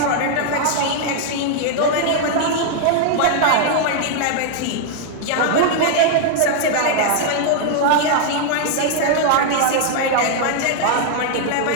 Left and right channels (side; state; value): both; different; correlation -0.01